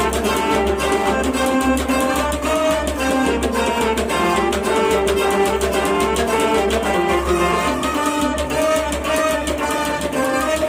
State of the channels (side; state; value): both; identical; correlation 1.00